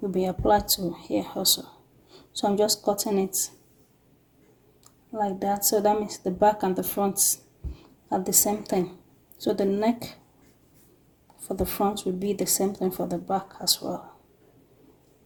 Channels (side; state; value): both; identical; correlation 1.00